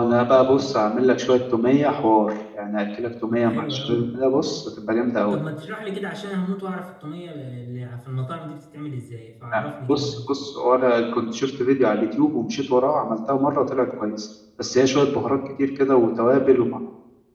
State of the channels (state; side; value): identical; both; correlation 1.00